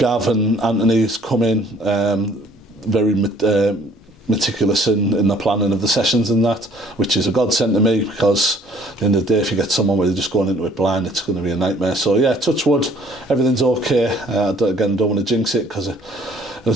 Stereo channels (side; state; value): both; normal; correlation 0.58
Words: and Anthony's come in very meticulous in the planning of the sessions and that, which is a godsend to me, because at the end of the day, if you get someone where they're just going into it blind, it's going to be a nightmare. So yeah, touch wood, everything's okay. Again, don't want to jinx it, because